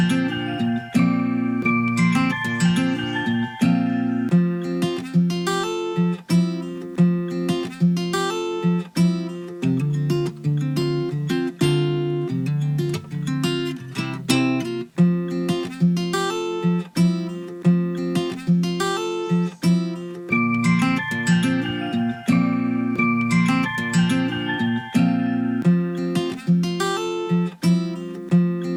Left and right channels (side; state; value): both; identical; correlation 1.00